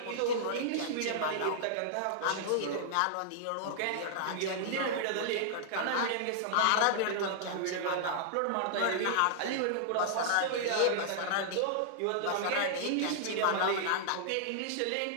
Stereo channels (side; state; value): both; different; correlation -0.01